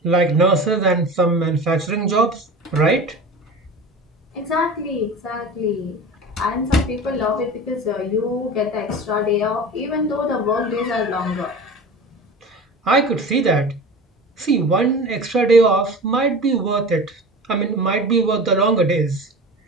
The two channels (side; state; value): both; normal; correlation 0.34